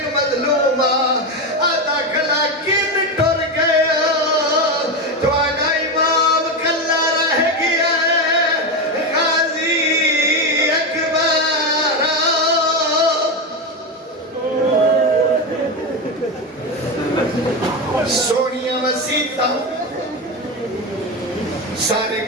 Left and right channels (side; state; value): both; normal; correlation 0.14